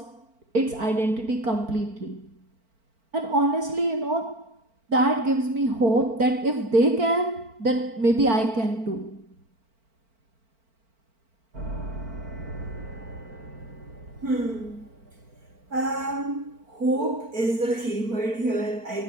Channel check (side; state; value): left; late; 4.4 ms